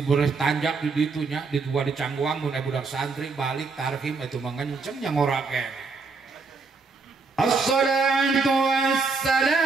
tanjak di ditunya di dua di cangguang mun budak santri balik tarhim itu mengenceng nya ngorake assalatu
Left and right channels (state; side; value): quieter; left; 4.4 dB